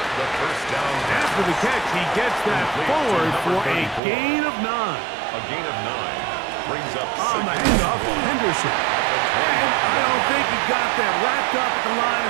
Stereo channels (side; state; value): left; drops out; at 4.0 s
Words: The first down. After the catch, he gets that forward for a gain of 9. A gain of 9 brings up On the handoff, Henderson. And I don't think he got that wrapped up at the line